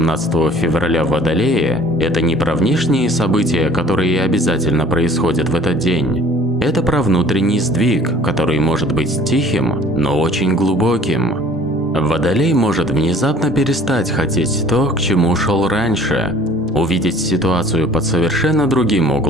февраля в Водолее – это не про внешние события, которые обязательно происходят в этот день. Это про внутренний сдвиг, который может быть тихим, но очень глубоким. Водолей может внезапно перестать хотеть то, к чему шел раньше, увидеть ситуацию под совершенно другим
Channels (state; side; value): normal; both; correlation 0.52